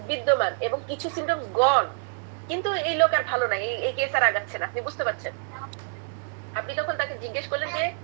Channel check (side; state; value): left; silent; 60 dB below the other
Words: বিদ্যমান এবং কিছু সিমটমস গন, কিন্তু এই লোক আর ভালো নাই, এই কেস আর আগাচ্ছে না, আপনি বুঝতে পারছেন? আপনি তখন তাকে জিজ্ঞেস করলেন যে